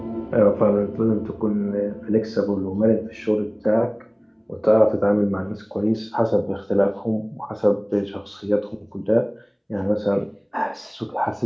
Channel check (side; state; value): both; identical; correlation 1.00